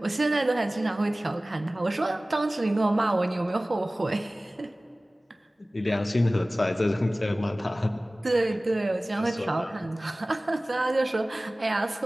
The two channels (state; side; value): normal; both; correlation 0.98